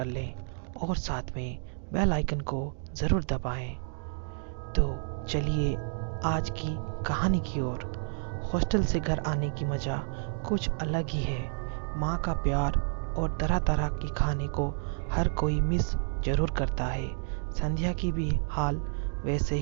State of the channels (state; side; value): silent; left; digital silence